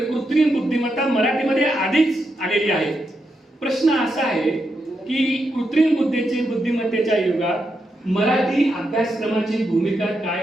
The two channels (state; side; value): normal; both; correlation 0.84